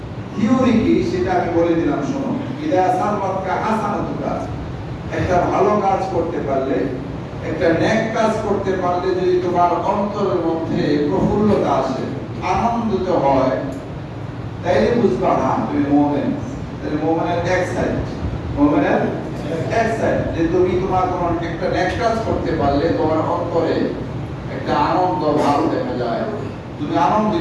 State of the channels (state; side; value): identical; both; correlation 1.00